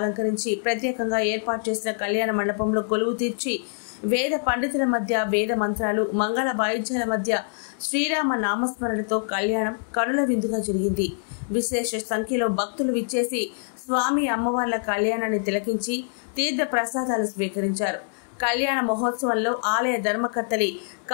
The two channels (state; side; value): silent; right; digital silence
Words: ప్రత్యేకంగా ఏర్పాటు చేసిన కళ్యాణ మండపంలో కొలువు తీర్చి వేద పండితుల మధ్య వేద మంత్రాలు మంగళ వాయిద్యాల మధ్య శ్రీరామ నామస్మరణతో కళ్యాణం కనుల విందుగా జరిగింది. విశేష సంఖ్యలో భక్తులు విచ్చేసి స్వామి అమ్మవార్ల కళ్యాణాన్ని తిలకించి తీర్థ ప్రసాదాలు స్వీకరించారు. కళ్యాణ మహోత్సవంలో ఆలయ ధర్మకర్తలి